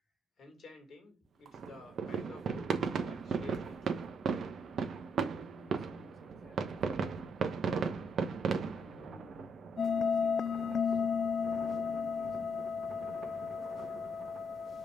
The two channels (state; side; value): normal; both; correlation 0.74